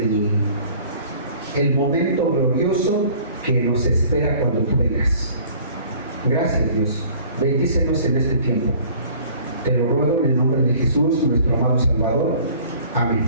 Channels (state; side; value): inverted; both; correlation -0.51